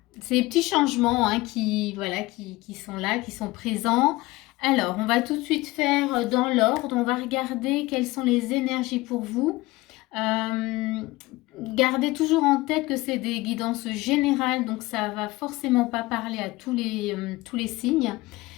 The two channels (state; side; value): quieter; right; 20.2 dB